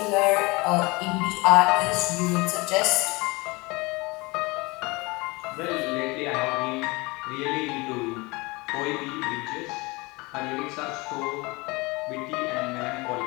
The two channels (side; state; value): right; quieter; 24.8 dB